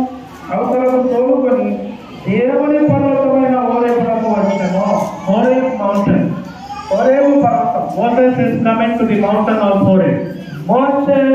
అవతలకు తోలుకొని దేవుని పర్వతమైన హోరేబునకు వచ్చెను. Horeb mountain. హోరేబు పర్వతం. Moses is coming to the mountain of Horeb. మోషే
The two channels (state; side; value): identical; both; correlation 1.00